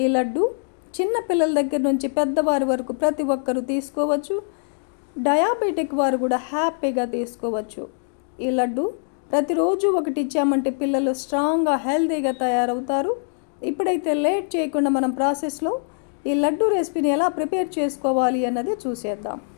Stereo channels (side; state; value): right; silent; digital silence